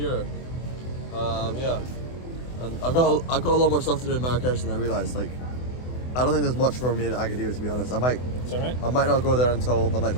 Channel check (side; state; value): right; late; 24 ms